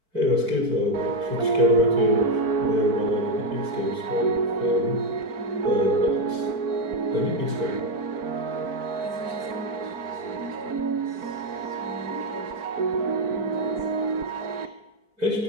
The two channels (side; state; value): left; late; 4.5 ms